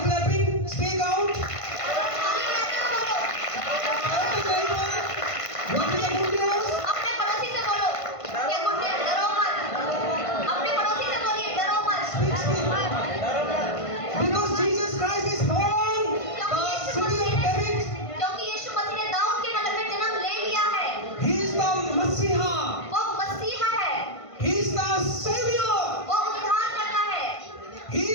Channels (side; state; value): right; late; 1.5 ms